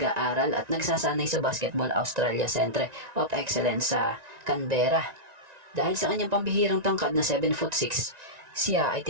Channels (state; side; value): late; left; 1.9 ms